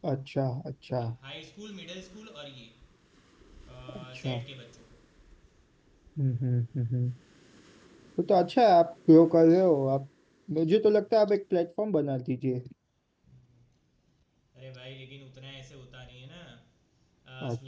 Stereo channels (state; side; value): identical; both; correlation 1.00